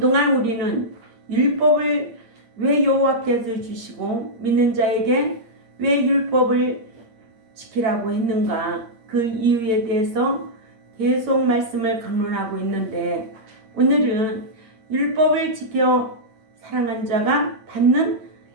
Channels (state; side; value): late; left; 8.7 ms